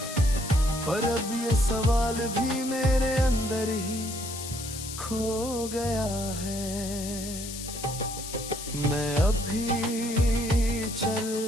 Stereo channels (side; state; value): left; noise; hiss, 9 dB below the sound